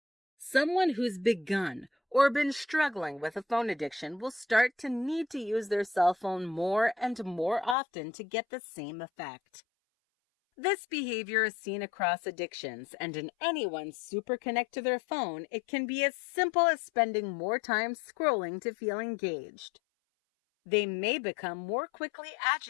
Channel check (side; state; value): right; drops out; at 7.8 s